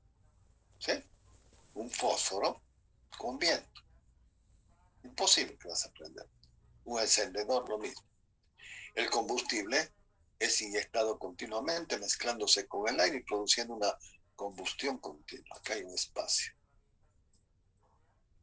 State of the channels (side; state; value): both; identical; correlation 1.00